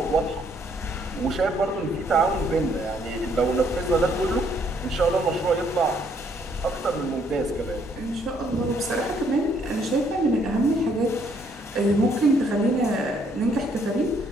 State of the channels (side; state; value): both; normal; correlation 0.68